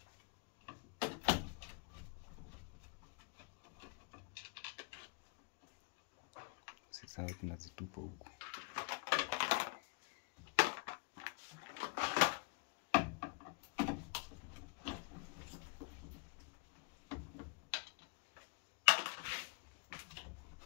Sasa tunazitupa huko.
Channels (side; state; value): right; quieter; 33.2 dB